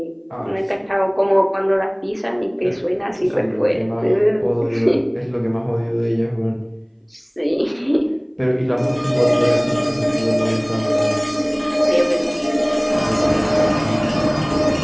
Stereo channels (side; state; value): both; identical; correlation 1.00